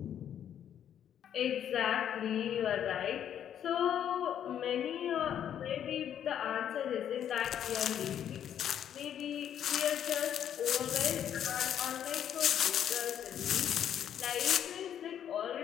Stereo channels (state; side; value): quieter; right; 9.7 dB